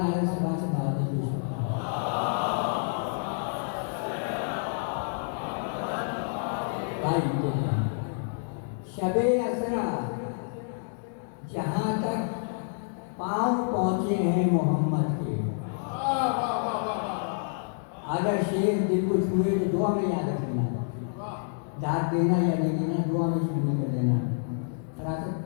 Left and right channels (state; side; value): silent; right; digital silence